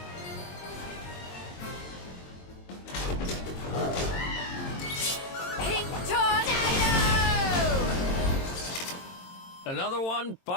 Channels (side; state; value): right; late; 22 ms